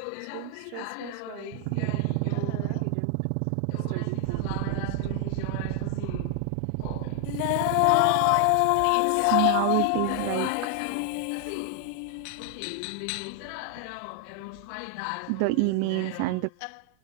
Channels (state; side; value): different; both; correlation 0.00